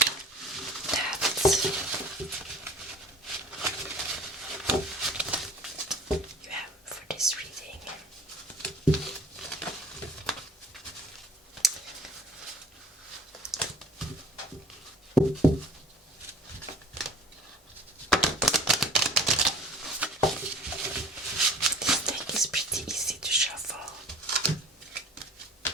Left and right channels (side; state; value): both; normal; correlation 0.45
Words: This deck is pretty easy to shuffle.